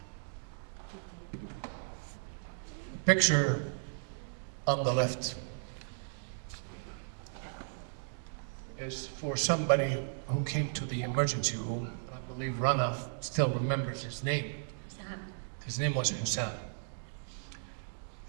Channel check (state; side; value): silent; left; digital silence